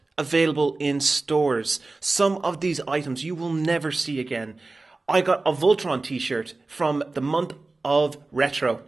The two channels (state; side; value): quieter; left; 3.4 dB